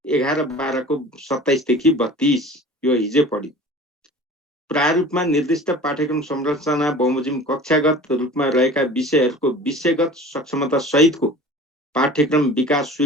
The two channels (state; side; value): normal; both; correlation 0.41